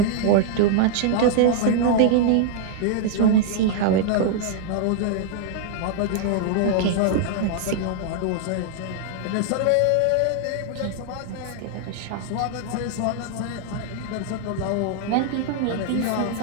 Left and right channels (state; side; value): different; both; correlation -0.01